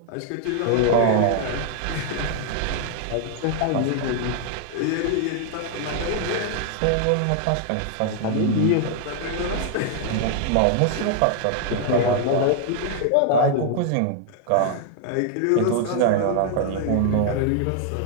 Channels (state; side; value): different; both; correlation -0.01